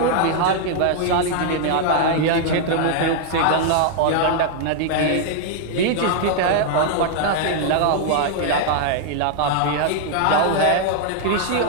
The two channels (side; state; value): both; different; correlation 0.00